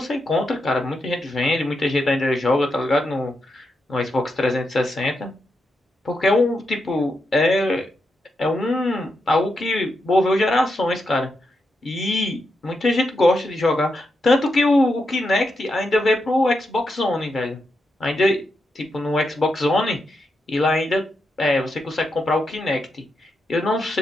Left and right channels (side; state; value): both; normal; correlation 0.85